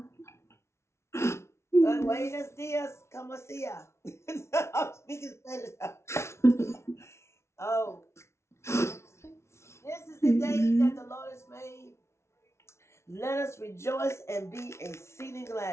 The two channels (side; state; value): right; late; 0.13 ms